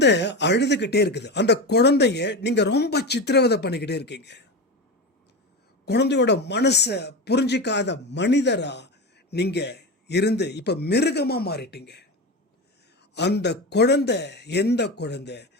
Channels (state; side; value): normal; both; correlation 0.22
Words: அழுதுகிட்டே இருக்குது. அந்த குழந்தைய நீங்க ரொம்ப சித்திரவதை பண்ணிக்கிட்டே இருக்கீங்க. குழந்தையோட மனசை புரிஞ்சிக்காத மனிதரா நீங்க இருந்து இப்ப மிருகமா மாறிட்டீங்க. அந்த குழந்தை எந்த குழந்தை?